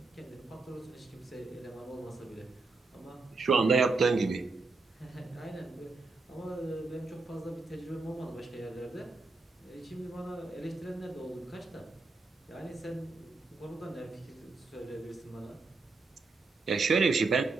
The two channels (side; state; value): left; quieter; 3.8 dB